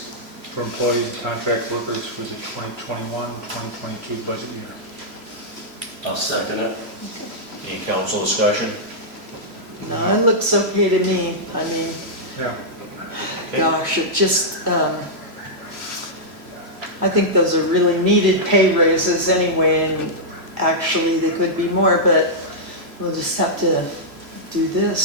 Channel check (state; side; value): late; left; 3.0 ms